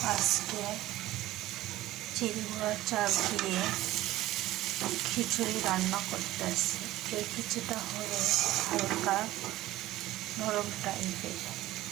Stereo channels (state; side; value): quieter; left; 16.0 dB